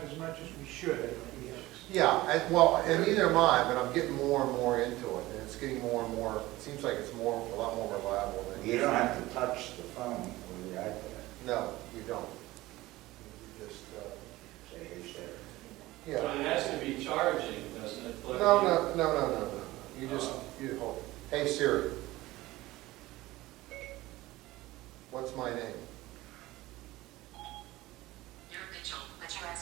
as much as we should, I think. Yeah, and neither am I, but I'm getting more and more into it, and it's getting more and more, it seems like it's a lot more reliable than. You don't have to touch the phone with the iPad. No, you don't. You just, Say, hey, Sarah. yeah. But it has to be charging, doesn't it? Plug No, in? no. You just, you hold, hey Siri, what's my name? You're Mitchell, but you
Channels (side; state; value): left; quieter; 18.3 dB